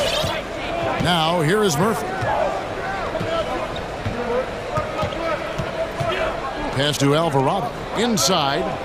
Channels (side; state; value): both; identical; correlation 1.00